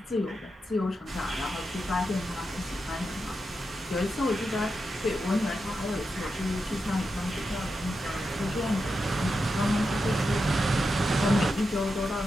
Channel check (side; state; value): both; normal; correlation 0.88